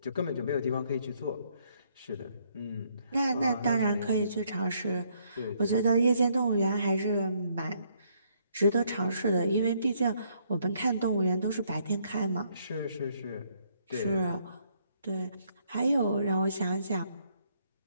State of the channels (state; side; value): inverted; both; correlation -0.70